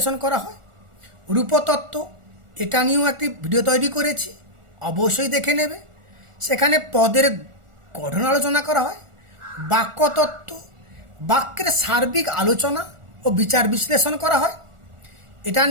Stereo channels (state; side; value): late; left; 1.4 ms